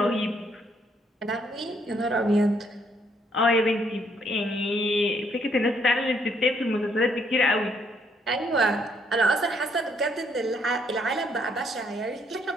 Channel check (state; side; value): normal; both; correlation 0.70